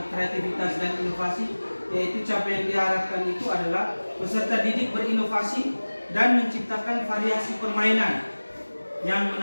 kreativitas dan inovasi, yaitu capaian yang diharapkan itu adalah peserta didik berinovasi dan menciptakan variasi permainan yang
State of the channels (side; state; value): both; inverted; correlation -1.00